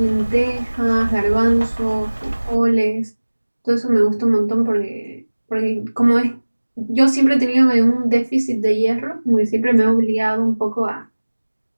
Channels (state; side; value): inverted; both; correlation -1.00